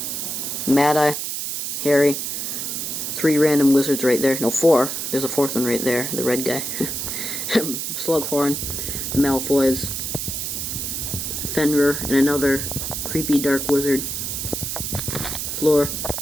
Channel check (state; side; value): noise; right; hiss, 3 dB below the sound